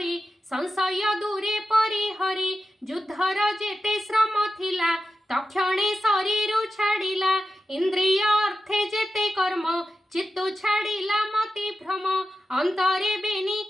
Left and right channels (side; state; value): both; normal; correlation 0.91